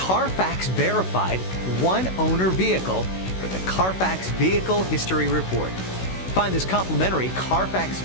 verified one-owner vehicle with the Carfax Vehicle History Report. Find this complimentary Carfax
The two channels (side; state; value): right; late; 16 ms